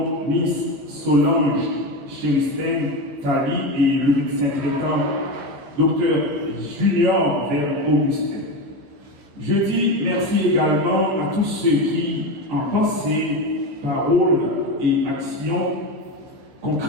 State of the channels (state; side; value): late; left; 15 ms